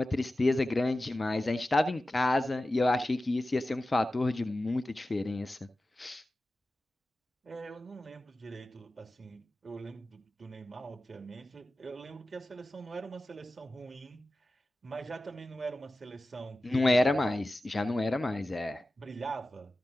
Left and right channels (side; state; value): both; normal; correlation 0.95